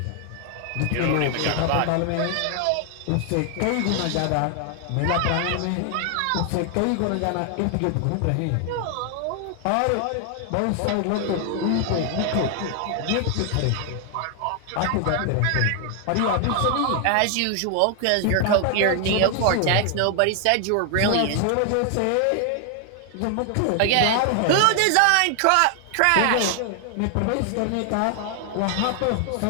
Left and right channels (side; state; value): both; different; correlation 0.00